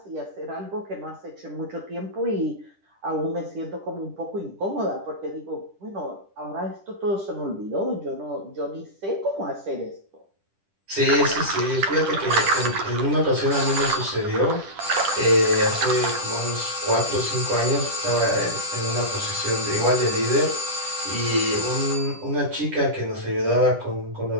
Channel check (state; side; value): late; left; 10 ms